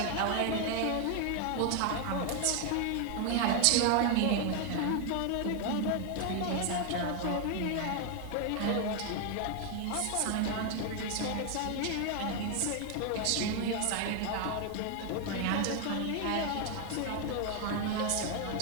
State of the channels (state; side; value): different; both; correlation 0.00